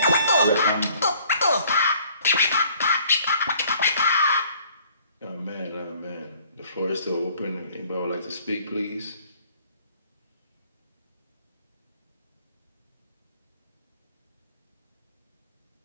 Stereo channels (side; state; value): both; inverted; correlation -0.57